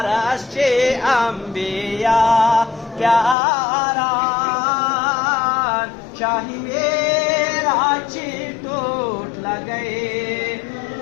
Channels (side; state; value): right; drops out; at 3.4 s